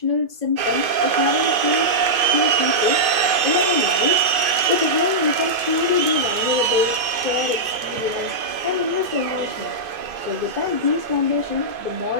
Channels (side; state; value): left; late; 2.5 ms